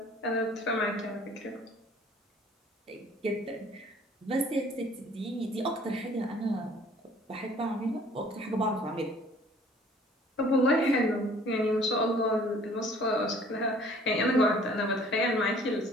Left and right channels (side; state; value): both; normal; correlation 0.54